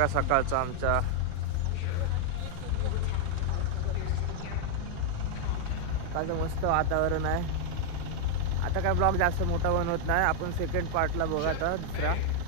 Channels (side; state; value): both; different; correlation 0.00